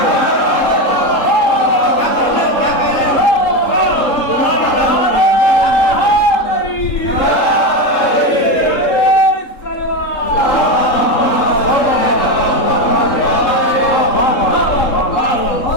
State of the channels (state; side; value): late; right; 3.7 ms